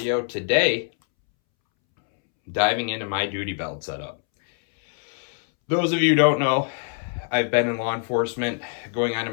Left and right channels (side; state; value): right; silent; 63 dB below the other